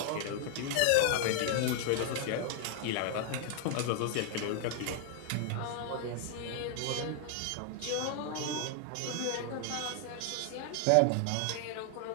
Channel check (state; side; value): different; both; correlation 0.00